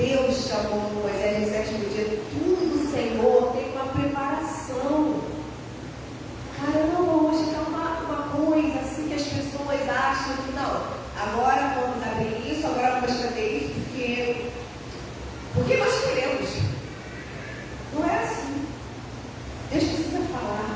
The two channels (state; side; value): identical; both; correlation 1.00